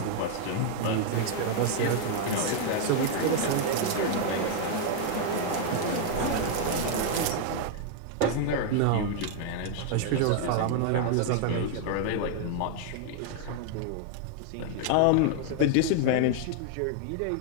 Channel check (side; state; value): both; different; correlation 0.00